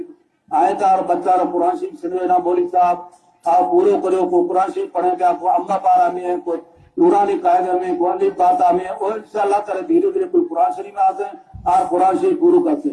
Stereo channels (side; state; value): both; identical; correlation 1.00